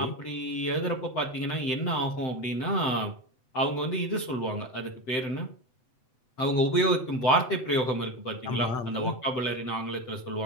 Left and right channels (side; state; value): right; late; 7.8 ms